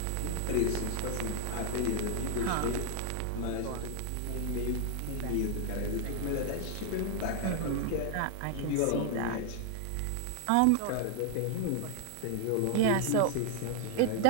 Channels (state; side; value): different; both; correlation 0.00